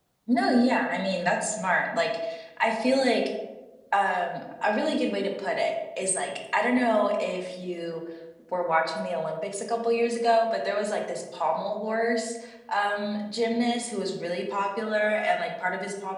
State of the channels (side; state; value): both; identical; correlation 1.00